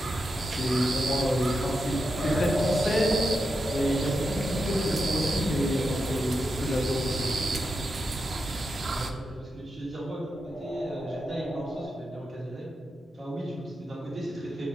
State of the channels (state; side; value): normal; both; correlation 0.87